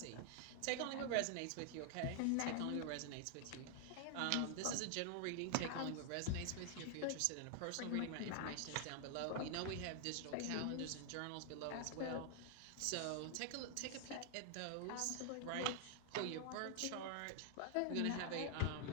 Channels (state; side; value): different; both; correlation 0.00